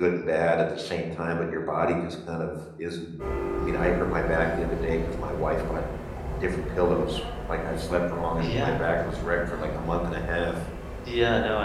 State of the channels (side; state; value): both; identical; correlation 1.00